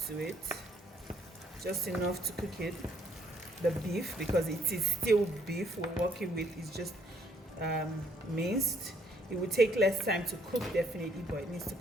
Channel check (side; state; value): both; normal; correlation 0.67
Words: to it, just enough to cook it, the beef, because it is still beef we're working with. It's just minced. It will take less time to cook definitely, but it needs to